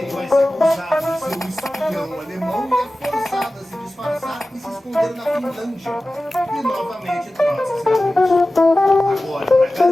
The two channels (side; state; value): both; normal; correlation 0.96